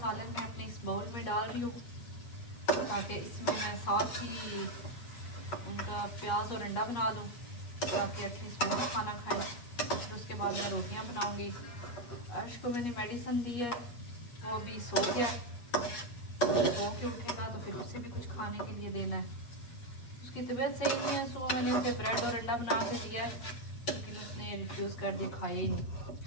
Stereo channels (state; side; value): late; right; 8.4 ms